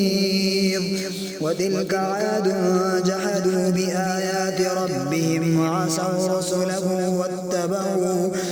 وتلك عاد جحدوا بآيات ربهم وعصوا رسله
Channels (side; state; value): both; identical; correlation 1.00